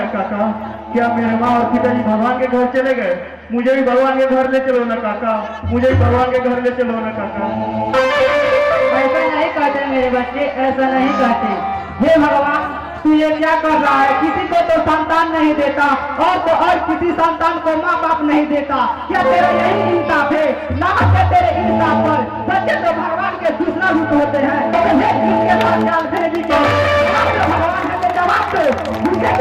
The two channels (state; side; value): identical; both; correlation 1.00